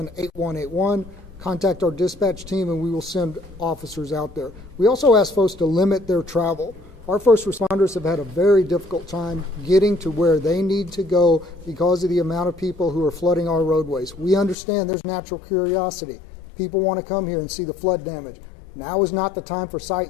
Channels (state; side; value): drops out; right; at 14.6 s